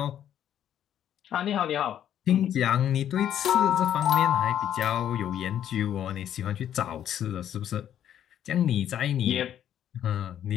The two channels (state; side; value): quieter; right; 10.4 dB